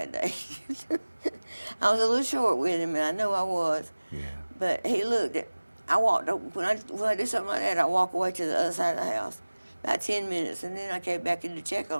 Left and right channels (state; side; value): inverted; both; correlation -1.00